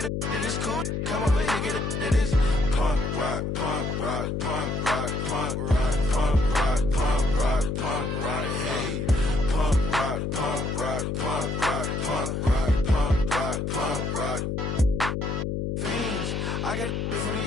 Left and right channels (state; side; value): noise; left; hum, 1 dB below the sound